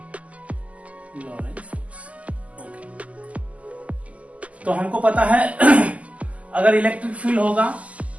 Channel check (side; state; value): left; late; 0.069 ms